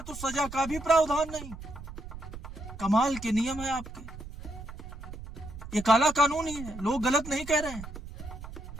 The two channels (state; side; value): noise; right; rumble, 12 dB below the sound